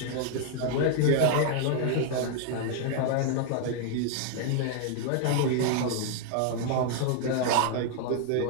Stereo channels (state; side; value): different; both; correlation 0.00